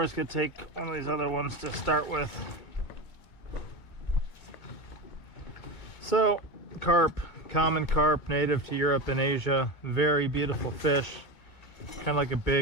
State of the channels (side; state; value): right; late; 2.2 ms